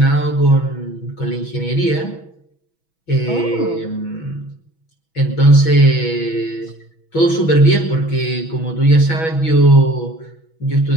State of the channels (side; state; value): right; late; 6.1 ms